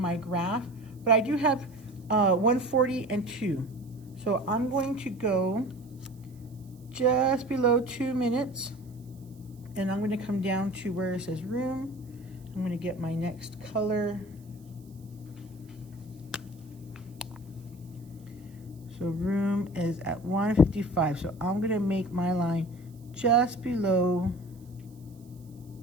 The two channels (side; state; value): right; noise; hiss, 30 dB below the sound